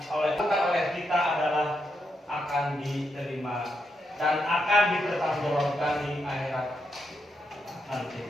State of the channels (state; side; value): normal; both; correlation 0.82